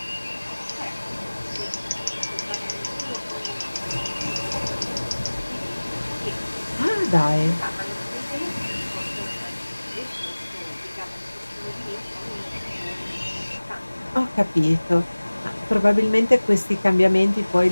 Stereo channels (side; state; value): both; inverted; correlation -1.00